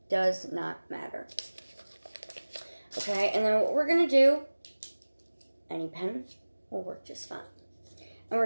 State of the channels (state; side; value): inverted; both; correlation -1.00